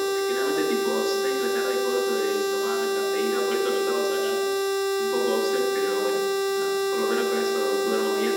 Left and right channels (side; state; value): both; identical; correlation 1.00